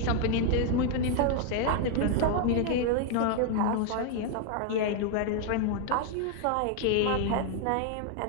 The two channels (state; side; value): different; both; correlation 0.00